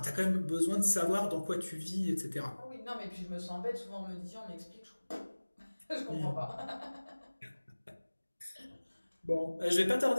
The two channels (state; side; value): inverted; both; correlation -1.00